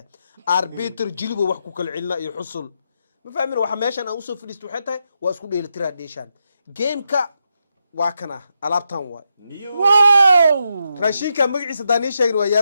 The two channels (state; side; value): inverted; both; correlation -0.83